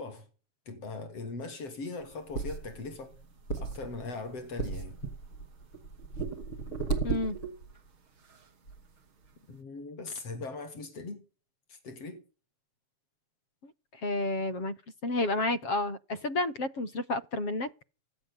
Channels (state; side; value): late; right; 7.9 ms